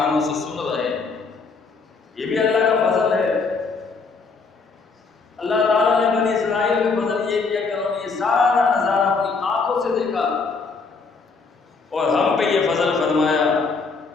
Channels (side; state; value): right; quieter; 4.5 dB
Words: سے سن رہے ہیں۔ یہ بھی اللہ کا فضل ہے۔ اللہ تعالیٰ نے بنی اسرائیل کا فضل یہ کیا کہ انہوں نے یہ سارا نظارہ اپنی آنکھوں سے دیکھا، اور ہم پہ یہ فضل فرمایا